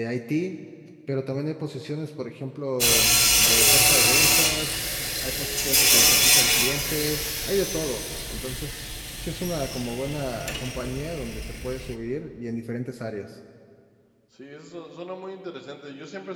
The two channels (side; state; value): both; identical; correlation 1.00